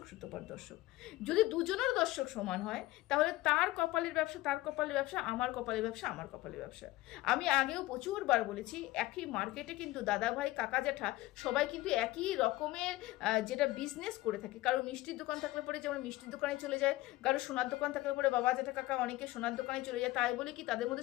দর্শক। যদি দুজনের দর্শক সমান হয় তাহলে তার কপালের ব্যবসা, আমার কপালের ব্যবসা। আমি আগেও প্রচুরবার বলেছি, একই মার্কেটে কিন্তু দাদা ভাই কাকা জ্যাঠা সবাই কিন্তু একই রকমের যেটা বিজনেস করে থাকে। কারো মিষ্টির দোকান থাকলে পরে যেমন মিষ্টির দোকানে চলে যায়, কারো সোনার দোকান থাকলে পরে বাবা জেঠা কাকা অনেকে সোনার দোকানে চলে যায়। তাই বলে কি তাদের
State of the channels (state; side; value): quieter; right; 18.3 dB